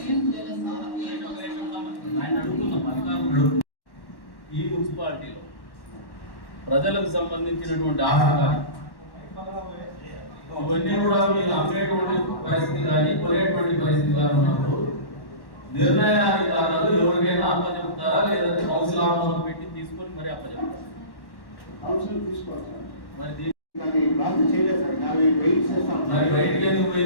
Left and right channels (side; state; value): right; late; 1.1 ms